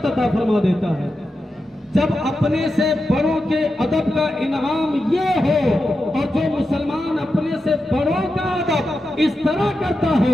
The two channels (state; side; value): normal; both; correlation 0.89